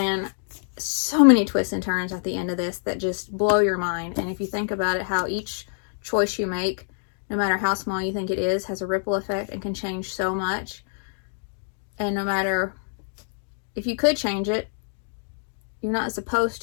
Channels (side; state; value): right; silent; digital silence